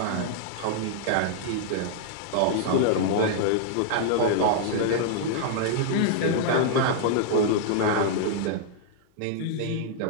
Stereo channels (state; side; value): different; both; correlation -0.01